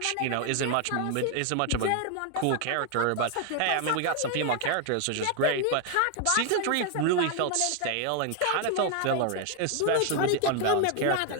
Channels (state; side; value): different; both; correlation 0.00